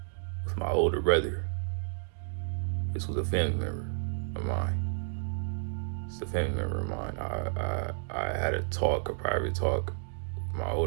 with my older brother. This was a family member of mine. It's a family member of mine. I had a private talk with my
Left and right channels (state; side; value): silent; left; digital silence